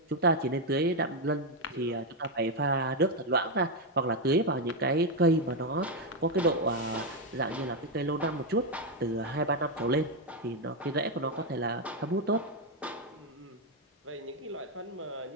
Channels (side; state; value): both; normal; correlation 0.04